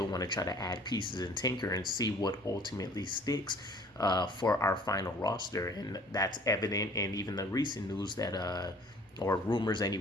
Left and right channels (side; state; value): both; normal; correlation 0.52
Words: want to try to add pieces and tinker and see what ultimately sticks for our final roster. And that's evident in even the recent news that, or rumors